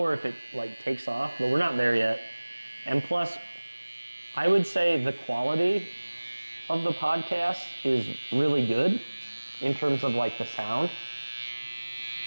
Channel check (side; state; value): both; inverted; correlation -1.00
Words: if it like takes off. But we're not there yet. And plus, I would say the quality of the podcast is really good in terms of like the sound.